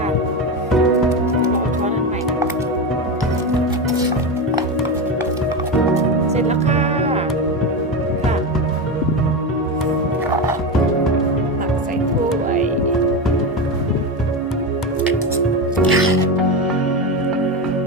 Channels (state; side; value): normal; both; correlation 0.17